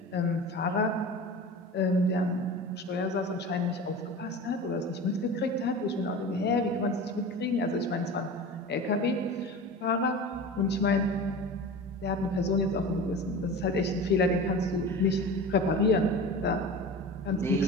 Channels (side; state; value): both; normal; correlation 0.33